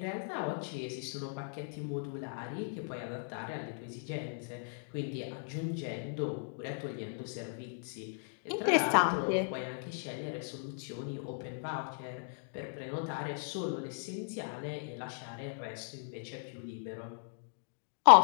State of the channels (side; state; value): right; silent; digital silence